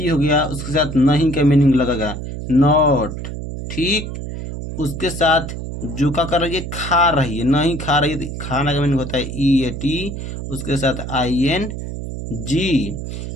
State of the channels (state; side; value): noise; right; hum, 6 dB below the sound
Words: हो गया, उसके साथ नहीं का मीनिंग लगेगा नॉट, ठीक। उसके साथ जो क्या कर रही है, खा रही है, नहीं खा रही है, तो खाना का मीनिंग होता है ई ए टी, उसके साथ आई एन जी,